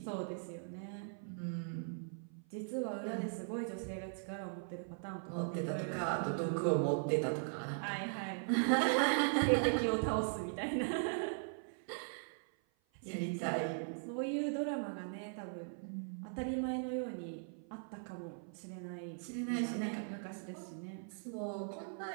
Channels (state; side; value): silent; left; 51 dB below the other